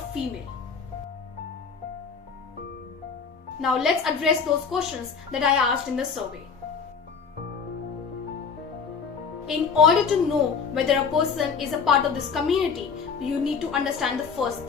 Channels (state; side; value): quieter; right; 5.8 dB